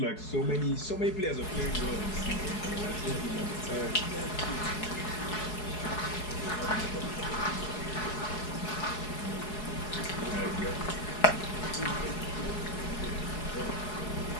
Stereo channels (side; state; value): right; late; 4.7 ms